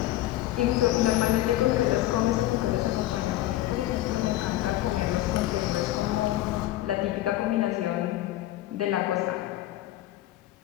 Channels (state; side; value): quieter; right; 15.0 dB